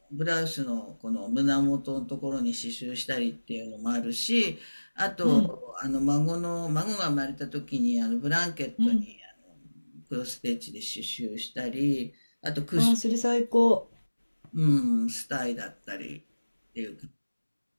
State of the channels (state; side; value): inverted; both; correlation -1.00